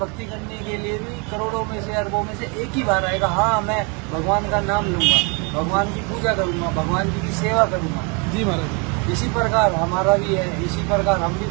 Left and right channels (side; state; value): left; quieter; 32.6 dB